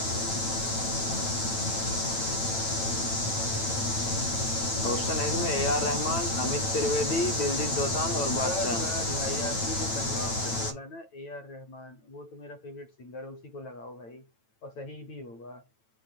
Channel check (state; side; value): late; right; 9.0 ms